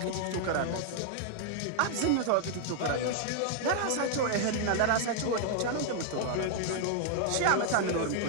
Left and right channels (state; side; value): different; both; correlation 0.00